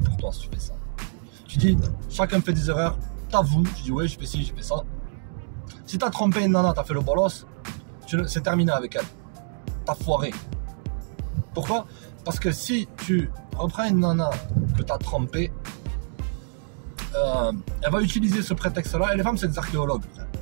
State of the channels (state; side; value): silent; left; digital silence